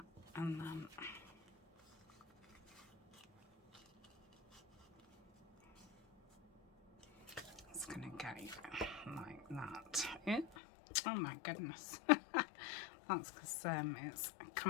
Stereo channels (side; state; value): right; drops out; at 10.6 s